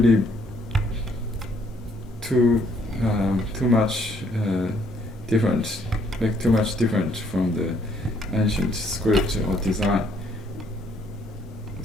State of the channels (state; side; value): normal; both; correlation 0.66